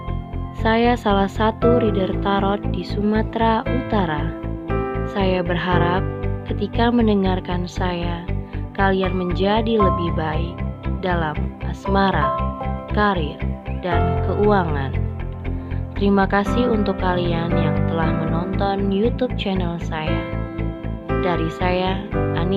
Saya salah satu reader tarot di Sumatera Utara. Saya berharap ketika mendengarkan saya, kalian menjadi lebih baik dalam asmara, karir, dan keuangan. Terima kasih untuk kalian yang telah menonton YouTube channel saya. Dari saya,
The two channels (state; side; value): identical; both; correlation 1.00